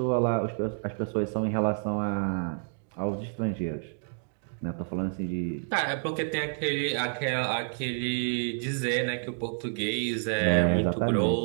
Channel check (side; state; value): left; silent; digital silence